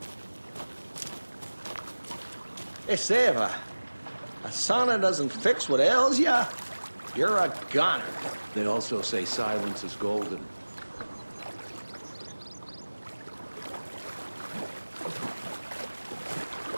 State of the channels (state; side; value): inverted; both; correlation -1.00